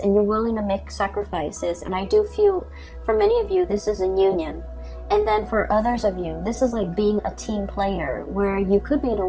you're willing to make sacrifices. And I do feel for many of you, this is a union. And then for others of you, this is like being a team player, where you could be in a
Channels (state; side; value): identical; both; correlation 1.00